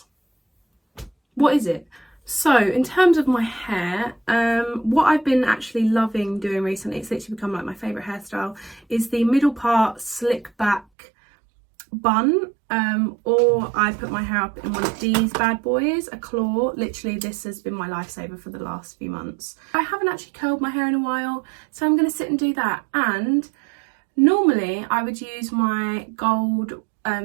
what is it? So in terms of my hair, what I've been actually loving doing recently, it's literally become like my favourite hairstyle, is the middle part slick back bun, or I put my hair up in one of these bad boys, a claw. Literally this has been my lifesaver for the last few months. I haven't actually curled my hair in a while, so I'm going to sit and do that. And normally I would use my gold,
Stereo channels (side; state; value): left; drops out; at 10.9 s